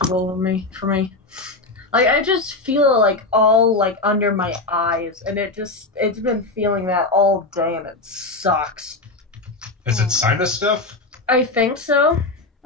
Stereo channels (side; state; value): right; quieter; 3.2 dB